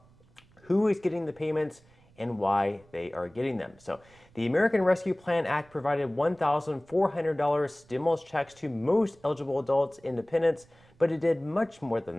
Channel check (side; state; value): right; noise; rumble, 29 dB below the sound